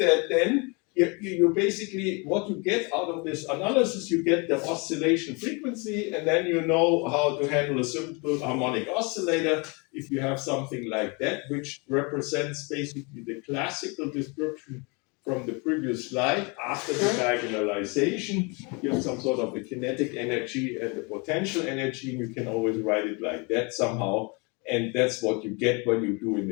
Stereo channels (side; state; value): right; quieter; 30.6 dB